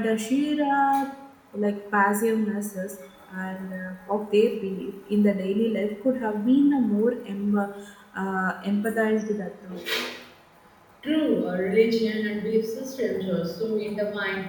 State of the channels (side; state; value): both; identical; correlation 1.00